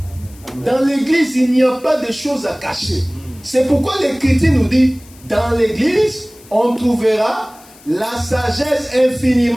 Dans l'église, il n'y a pas de choses à cacher. C'est pourquoi l'Écriture nous dit, dans l'église, on trouvera la sagesse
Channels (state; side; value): noise; left; hiss, 24 dB below the sound